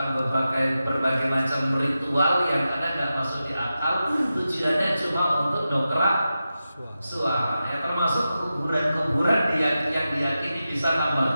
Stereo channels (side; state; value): both; inverted; correlation -0.92